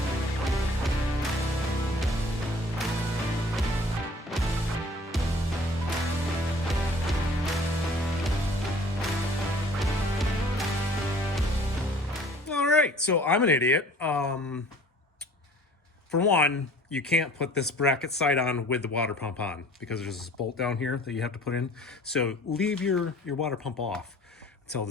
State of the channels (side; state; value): both; normal; correlation 0.50